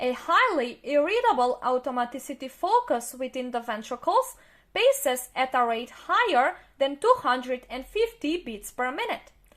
highly irritable automaticity focus within the ventricles paces at a rate higher than 250 beats per minute.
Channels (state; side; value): identical; both; correlation 1.00